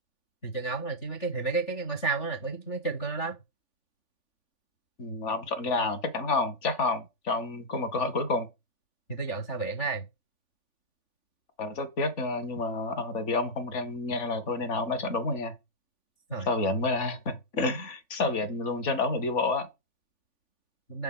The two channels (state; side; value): late; right; 3.5 ms